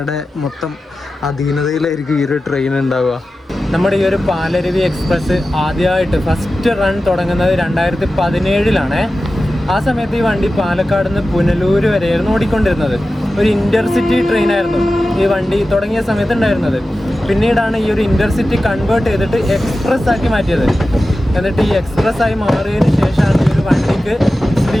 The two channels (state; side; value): normal; both; correlation 0.94